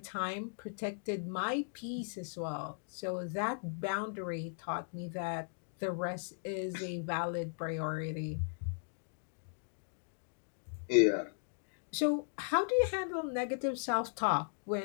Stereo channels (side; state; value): right; silent; digital silence